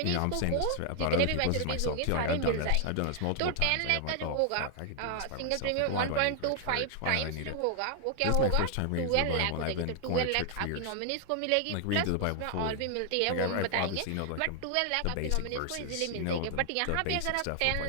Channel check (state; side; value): different; both; correlation 0.00